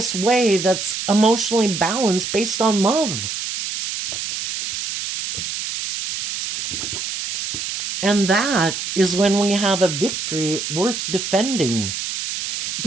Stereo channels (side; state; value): right; noise; hiss, 5 dB below the sound